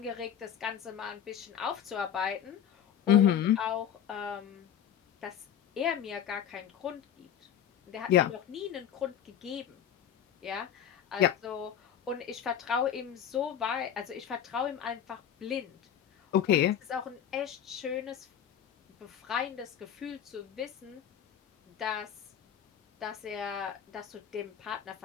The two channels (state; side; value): quieter; right; 9.3 dB